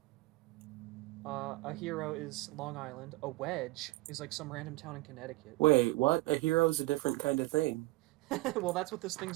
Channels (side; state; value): left; quieter; 21.0 dB